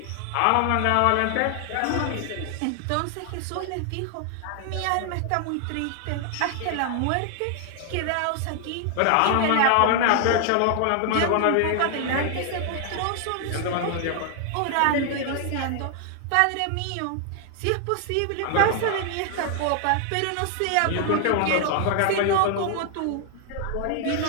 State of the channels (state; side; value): different; both; correlation 0.00